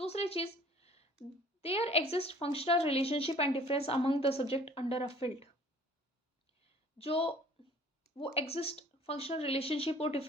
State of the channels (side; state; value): both; normal; correlation 0.52